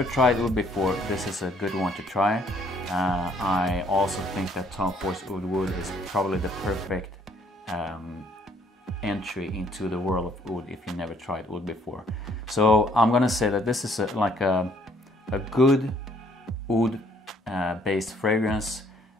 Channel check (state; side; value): normal; both; correlation 0.64